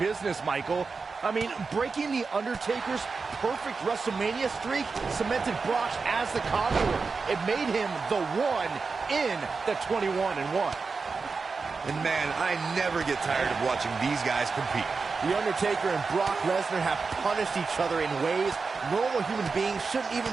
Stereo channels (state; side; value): quieter; left; 4.6 dB